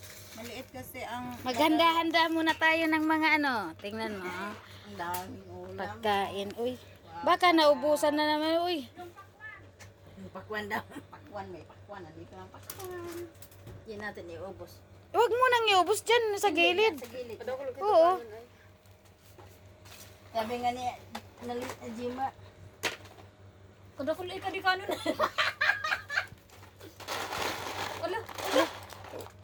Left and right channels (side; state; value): both; identical; correlation 1.00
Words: Maliit kasi ang Maghanda-handa muna tayo ng mga ano. Tingnan mo. ang daming ulam. Pagkain. Uy. Baka naubusan na naman. Uy. Pakwan daw. Pakwan, may pakwan. Nandito ang pakwan. Yan natin iubos. Huwag mo nang iubos dyan sa gilid. Sa gilid. Oo. Sabi nga ni Jima. Kudakuloy ka di kanon. Wala.